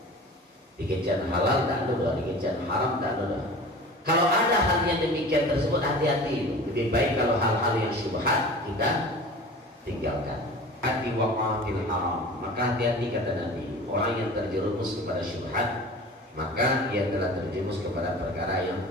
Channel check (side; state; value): both; normal; correlation 0.39